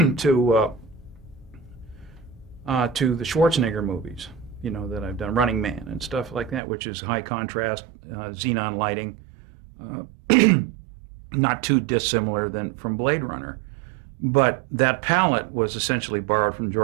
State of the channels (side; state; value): left; drops out; at 6.6 s